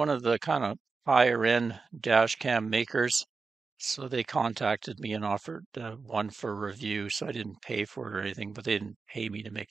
of the kind of higher end dash cam makers. So they contacted me and offered one for review. So I didn't pay for it or anything, but they didn't pay me to make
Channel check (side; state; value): left; quieter; 4.4 dB